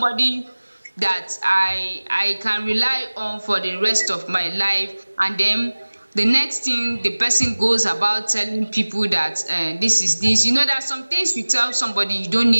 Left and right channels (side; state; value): both; inverted; correlation -1.00